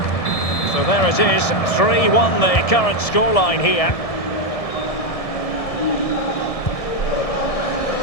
So there it is, 3-1 the current scoreline here.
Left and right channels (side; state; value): right; late; 1.7 ms